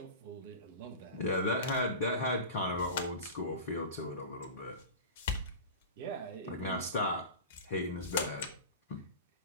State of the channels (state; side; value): inverted; both; correlation -0.31